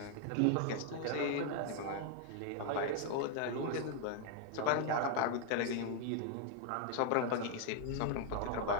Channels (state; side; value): different; both; correlation 0.00